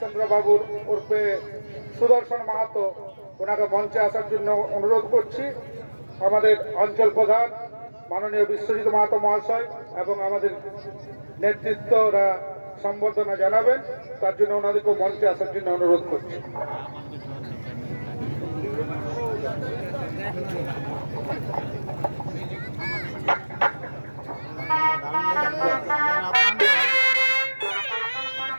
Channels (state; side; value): inverted; both; correlation -1.00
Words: বাবুর ওরফে সুদর্শন মাহাতো ওনাকে মঞ্চে আসার জন্য অনুরোধ করছি। আমাদের অঞ্চল প্রধান মাননীয় বিশ্বজিৎ মাহাতো মহাশয় এবং আমাদের নেতৃত্বরা সম্বর্ধনা জানাবেন, তার জন্য ওনাদেরকে মঞ্চে আসার জন্য অনুরোধ করছি।